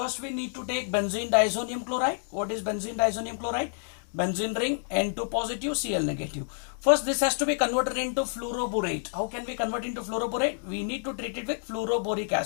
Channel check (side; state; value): right; silent; digital silence